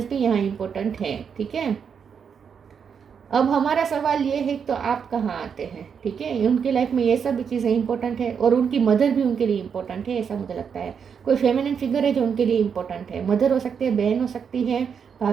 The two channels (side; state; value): left; quieter; 6.9 dB